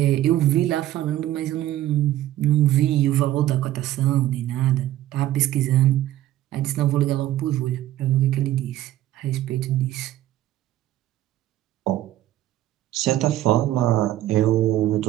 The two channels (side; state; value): left; quieter; 13.8 dB